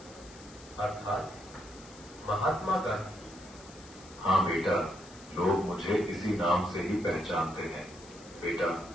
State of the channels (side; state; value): left; noise; hiss, 20 dB below the sound